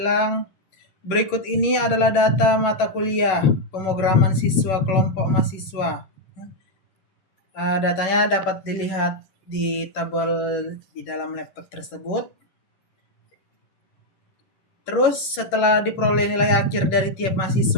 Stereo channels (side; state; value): right; late; 11 ms